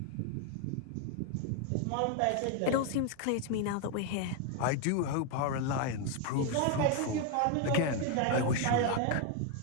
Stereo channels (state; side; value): different; both; correlation 0.01